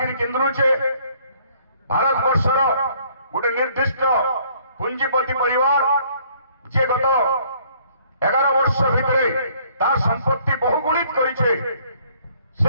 केन्द्रुचे भारत वर्षर गोटे निर्दिष्ट पुंजीपति परिवार जे गत 11 वर्ष भितर तार संपत्ति बहुगुणित करिछे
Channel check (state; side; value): inverted; both; correlation -0.61